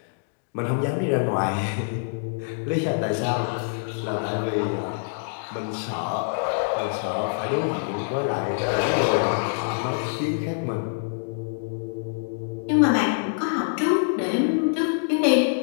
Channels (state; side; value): silent; right; digital silence